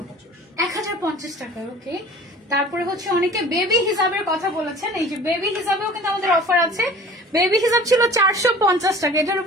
1050 টাকা। ওকে, তারপরে হচ্ছে অনেকে বেবি হিসাবের কথা বলেছেন, এই যে বেবি হিসাবেও কিন্তু আমাদের অফার আছে। বেবি হিসাব ছিল 450 টাকা, এটার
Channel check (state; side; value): normal; both; correlation 0.45